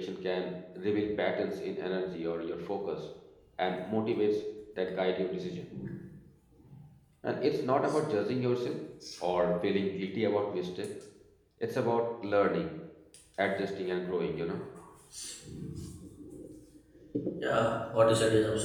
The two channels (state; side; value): identical; both; correlation 1.00